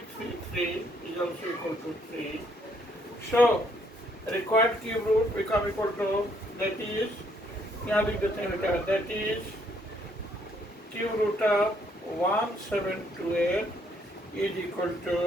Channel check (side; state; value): both; normal; correlation 0.69